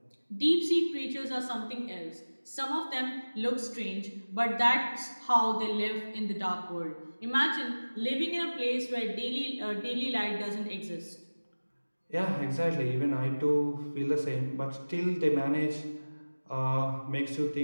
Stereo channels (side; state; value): both; inverted; correlation -1.00